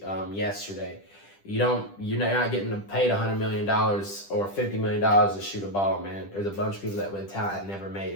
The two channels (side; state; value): right; late; 10 ms